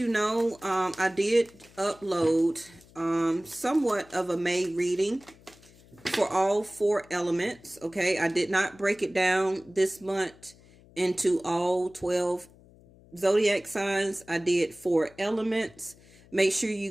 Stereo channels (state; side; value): noise; left; hum, 25 dB below the sound